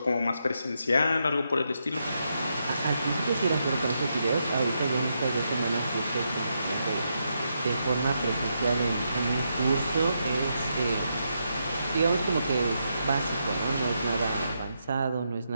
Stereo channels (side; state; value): both; inverted; correlation -0.82